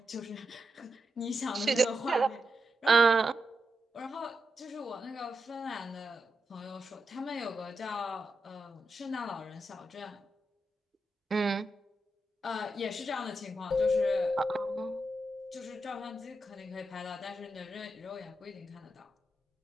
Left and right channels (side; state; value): both; normal; correlation 0.87